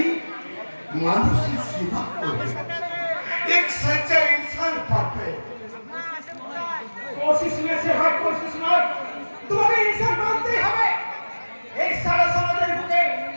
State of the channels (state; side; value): inverted; both; correlation -1.00